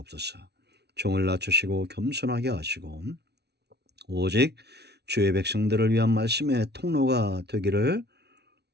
종을 낮추시고 겸손하게 하시고 오직 주의 백성들을 위한 말씀의 통로가 되기를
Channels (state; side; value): late; left; 0.49 ms